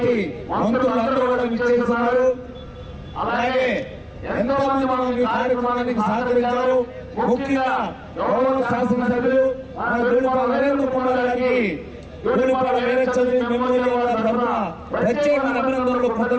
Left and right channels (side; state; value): both; identical; correlation 1.00